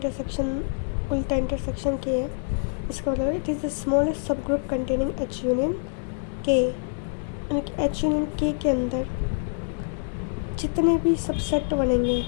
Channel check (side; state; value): right; silent; 61 dB below the other